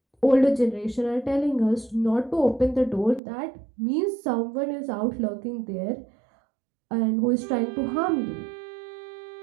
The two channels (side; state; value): left; drops out; at 3.2 s